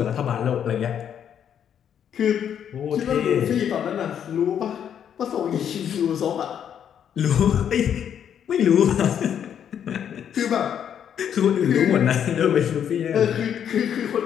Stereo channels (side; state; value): right; quieter; 8.9 dB